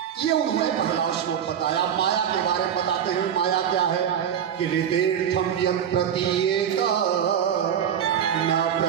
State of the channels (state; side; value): quieter; left; 8.9 dB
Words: ये उन्होंने पहला श्लोक बताया। माया के बारे में बताते हैं। माया क्या है कि ऋतेर्थम यम प्रतीयेत न